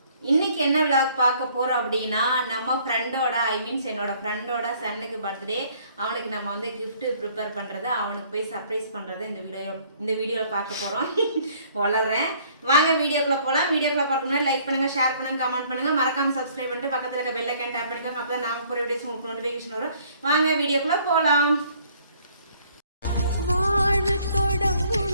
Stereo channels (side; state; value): both; inverted; correlation -0.60